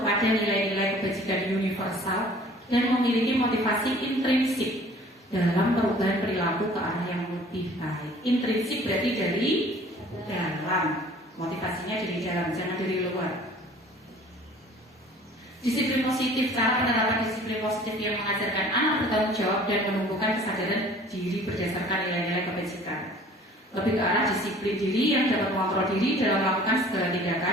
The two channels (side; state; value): both; normal; correlation 0.50